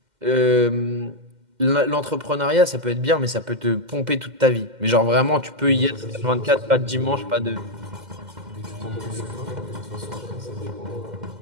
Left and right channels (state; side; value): late; left; 2.1 ms